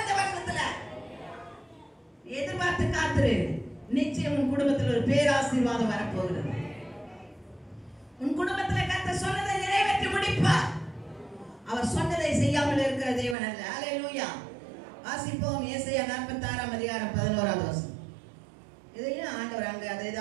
இந்த வருஷத்துல எதிர்பார்த்து காத்துரு. நிச்சயம் உன் குடும்பத்தில் ஒரு பேராசீர்வாதம் வரப்போகிறது. உன் குடும்பத்தில் கர்த்தர் சொன்னதை நிறைவேற்றி முடிப்பார். அவர் சொன்னதை செய்யாமல் இருக்கிற தேவன் அல்ல. அல்லேலூயா. வாசிப்போம். ஏசாயா 46ஆம் அதிகாரம் 11வது வசனம். இதையும் ஆண்டவர் அங்க அதை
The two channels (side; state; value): left; drops out; at 13.4 s